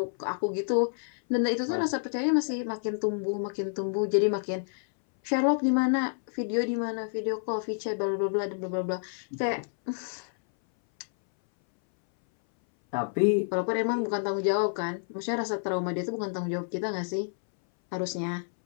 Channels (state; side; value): silent; right; 59 dB below the other